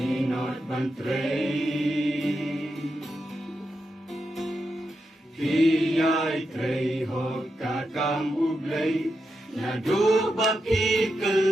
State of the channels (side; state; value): both; normal; correlation 0.86